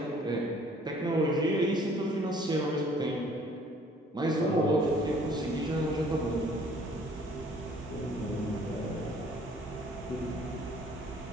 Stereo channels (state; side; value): normal; both; correlation 0.57